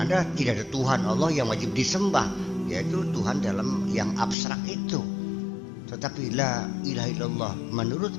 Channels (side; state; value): right; drops out; at 4.4 s